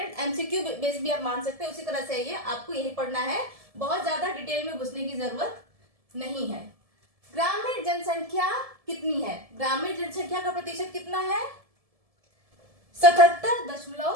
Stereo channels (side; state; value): left; late; 1.7 ms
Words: एमसीक्यू बेस भी आप मान सकते हैं। उसी तरह से ये आपको यही पढ़ना है, बहुत ज्यादा डिटेल में घुसने की जरूरत नहीं है। ग्रामीण जनसंख्या कितनी है? ग्रामीण जनसंख्या का प्रतिशत कितना है?